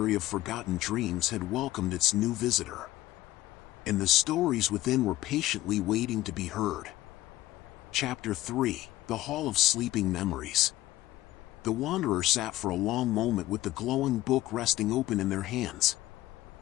of forgotten dreams had welcomed its new visitor. And the stories within were patiently waiting to be heard. Chapter 3: The Hall of Sleeping Memories. The wanderer sat for a long moment with the glowing book resting open in their hands.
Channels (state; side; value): quieter; right; 16.1 dB